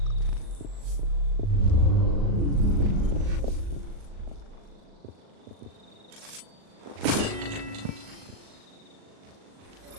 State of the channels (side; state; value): left; late; 39 ms